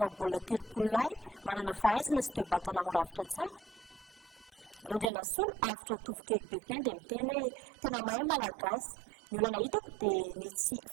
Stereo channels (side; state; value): left; drops out; at 5.1 s